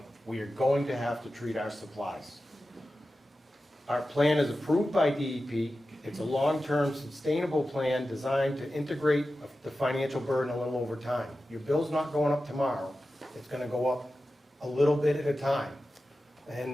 We are going to have to treat our supplies. Our plan is approved by DEP. It's a long-term sustainable plan designed to integrate the financial burden a little over time. Your bill's not going up tomorrow, it's gonna go up a little bit at a time.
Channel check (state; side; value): normal; both; correlation 0.93